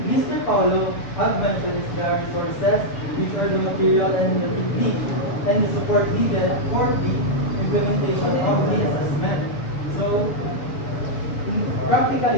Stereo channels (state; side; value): late; right; 7.1 ms